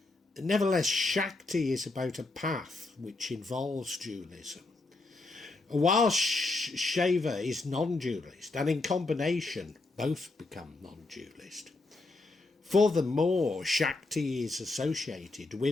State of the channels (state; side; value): quieter; right; 3.3 dB